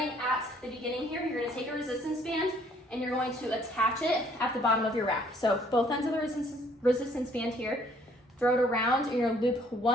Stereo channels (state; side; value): normal; both; correlation 0.62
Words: at the beginning here, you're going to take a resistance band and you're going to attach it at the bottom of your rack. So both ends of the resistance band here, throw it around, and you're going to loop